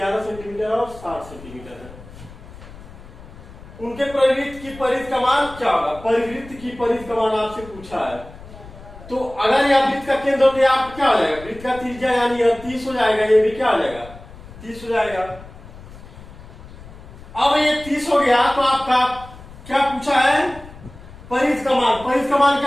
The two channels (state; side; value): noise; left; rumble, 18 dB below the sound